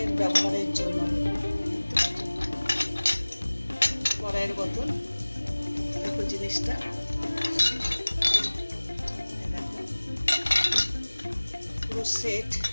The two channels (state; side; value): inverted; both; correlation -1.00